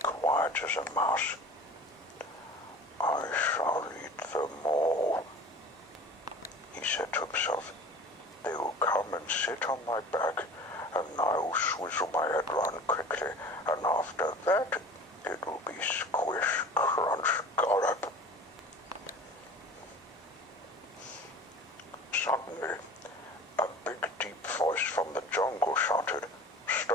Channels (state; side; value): normal; both; correlation 0.41